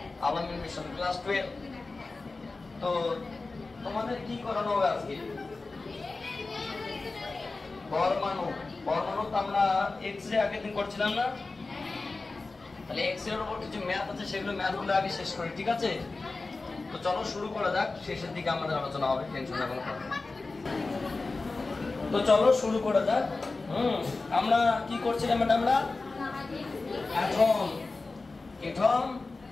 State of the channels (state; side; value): quieter; right; 3.6 dB